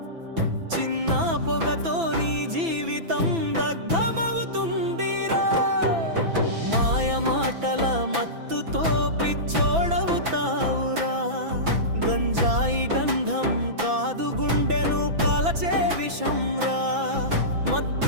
చిన్న పొగతో నీ జీవితం దగ్ధమవుతుందిరా. మాయ మాటల మత్తుతో పిచ్చోడవుతావురా. గంజాయి గంధం కాదు గుండెను కాలచే విషంరా.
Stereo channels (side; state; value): left; late; 6.0 ms